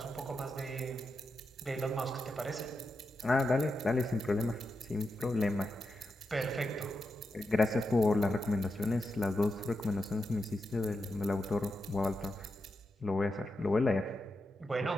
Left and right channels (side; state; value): both; normal; correlation 0.87